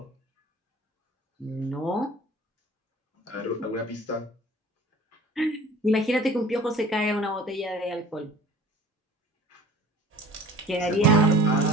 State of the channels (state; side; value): normal; both; correlation 0.46